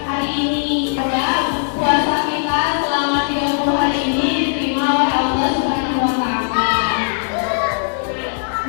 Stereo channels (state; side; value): silent; right; digital silence